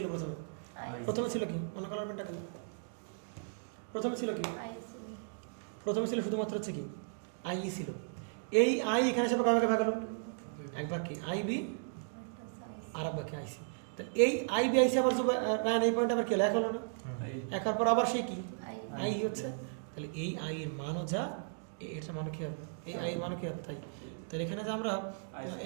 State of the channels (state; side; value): silent; left; digital silence